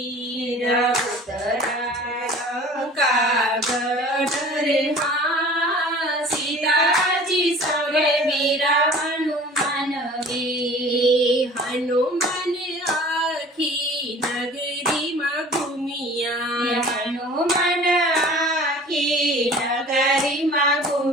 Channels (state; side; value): normal; both; correlation 0.45